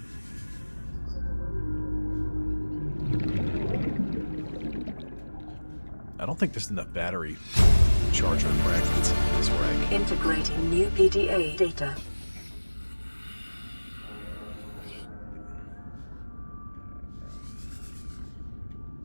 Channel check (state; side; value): inverted; both; correlation -1.00